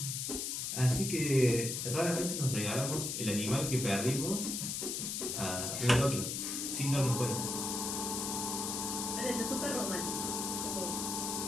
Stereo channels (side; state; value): left; noise; hiss, 2 dB below the sound